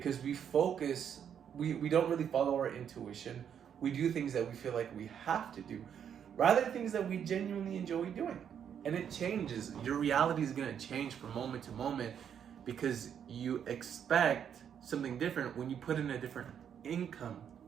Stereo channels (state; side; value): quieter; left; 8.4 dB